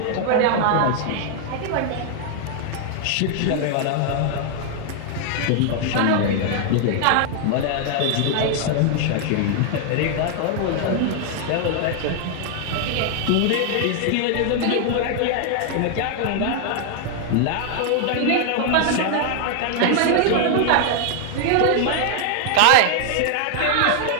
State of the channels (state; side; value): different; both; correlation 0.00